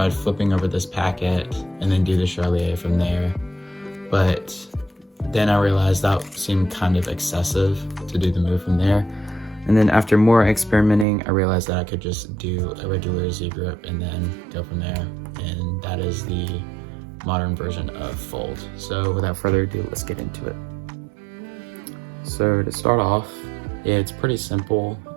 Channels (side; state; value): left; drops out; at 11.1 s